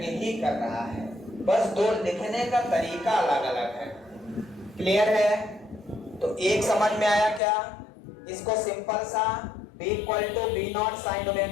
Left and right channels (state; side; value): drops out; right; at 7.4 s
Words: ही कर रहा है। बस दो लिखने का तरीका अलग अलग है। क्लियर है? तो एक समझ में आया क्या? इसको सिंपल सा B equal to B not sine